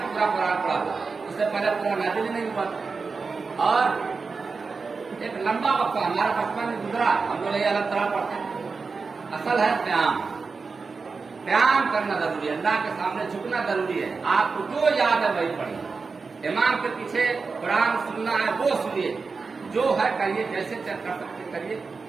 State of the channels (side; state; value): left; quieter; 4.6 dB